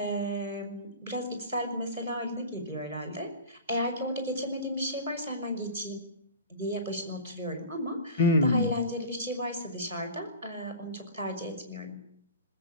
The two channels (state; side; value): inverted; both; correlation -0.35